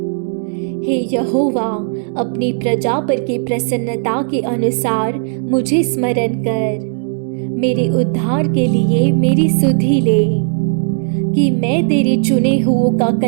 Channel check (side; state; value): left; silent; digital silence